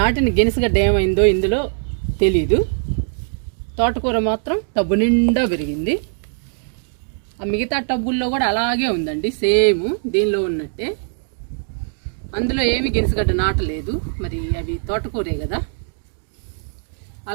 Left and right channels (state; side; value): silent; left; digital silence